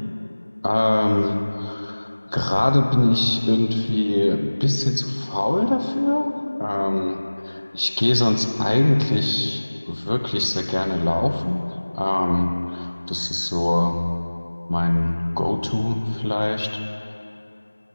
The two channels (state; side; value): inverted; both; correlation -1.00